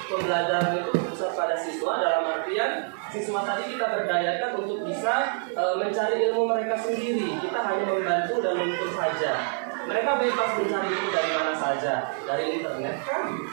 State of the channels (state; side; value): silent; left; 57 dB below the other